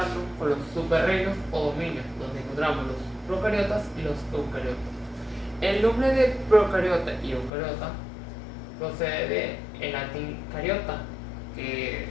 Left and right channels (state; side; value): drops out; right; at 7.5 s